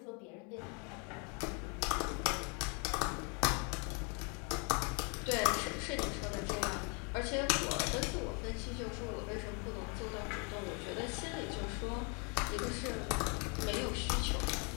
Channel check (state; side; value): quieter; right; 34.6 dB